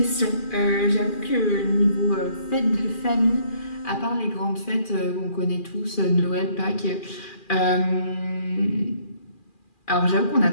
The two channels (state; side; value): late; right; 2.4 ms